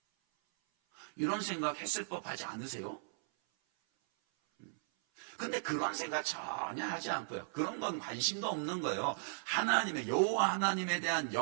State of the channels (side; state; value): left; silent; 53 dB below the other